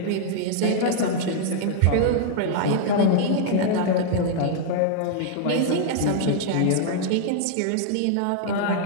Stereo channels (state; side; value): different; both; correlation -0.01